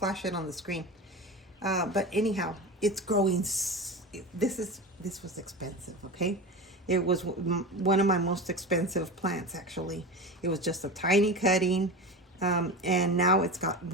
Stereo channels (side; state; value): both; normal; correlation 0.27